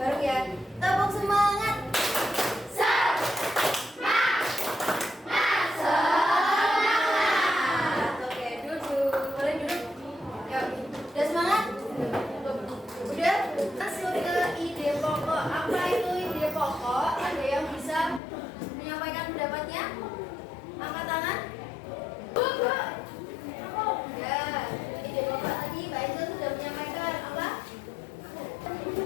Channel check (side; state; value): right; drops out; at 18.2 s